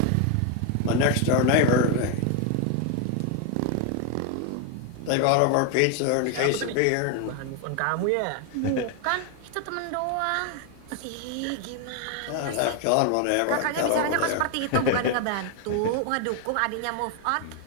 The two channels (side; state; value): both; different; correlation 0.01